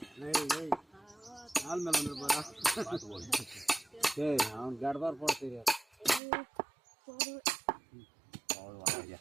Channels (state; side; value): drops out; left; at 6.2 s